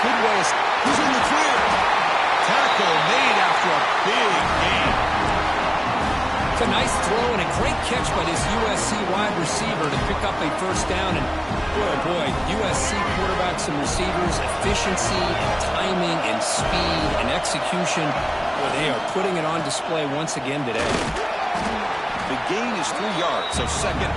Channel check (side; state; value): both; identical; correlation 1.00